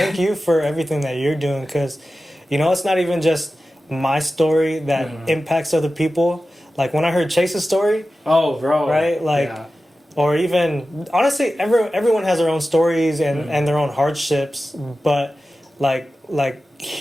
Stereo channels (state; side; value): normal; both; correlation 0.94